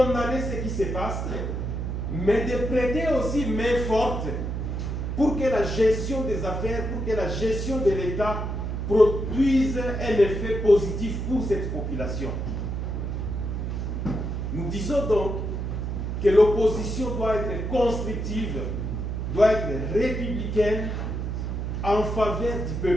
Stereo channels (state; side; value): noise; right; hum, 3 dB below the sound